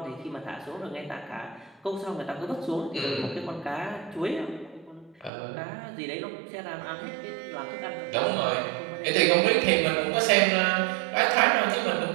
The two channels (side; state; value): left; drops out; at 5.3 s